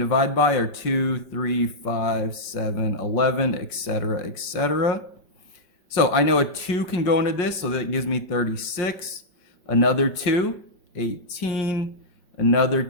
by are 2, 3, 5, 7, 11, etc., etc. So I know a 2 can go into this, so that gives me 36. Another 2, 18. Another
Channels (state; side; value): late; right; 5.6 ms